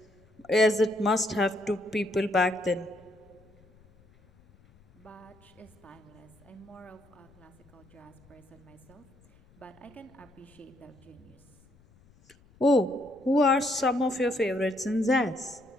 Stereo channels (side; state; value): left; noise; rumble, 29 dB below the sound